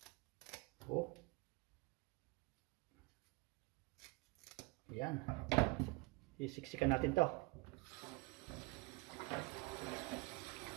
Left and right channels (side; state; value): left; quieter; 24.9 dB